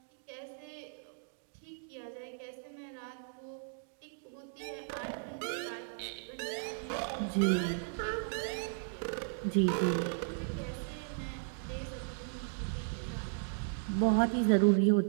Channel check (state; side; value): silent; left; digital silence